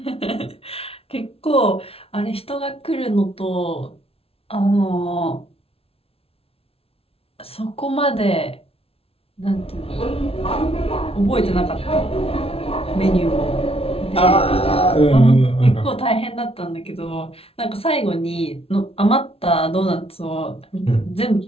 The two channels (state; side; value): late; right; 0.28 ms